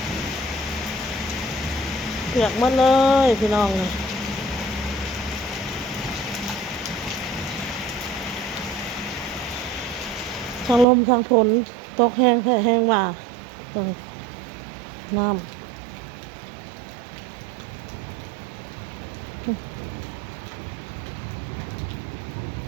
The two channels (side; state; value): left; drops out; at 10.9 s